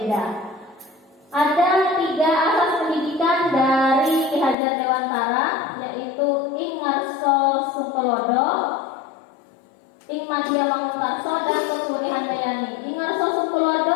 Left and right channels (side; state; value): right; drops out; at 4.5 s